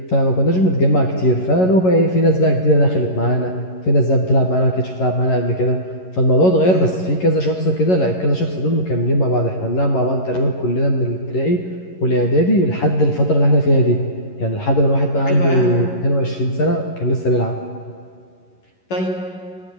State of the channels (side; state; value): right; late; 11 ms